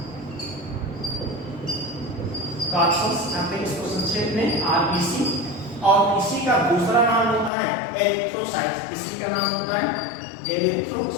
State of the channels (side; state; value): right; drops out; at 7.5 s